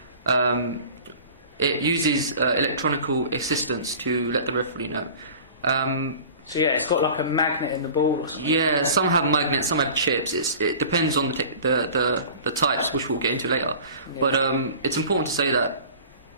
It uses electronical assistance to let the referee know. So yeah, it's got like a magnet in the ball or something. Yeah, some have magnets, some have chips. It depends on the types, which we'll get into later. Yeah. But it's important to say that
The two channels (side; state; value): both; inverted; correlation -0.42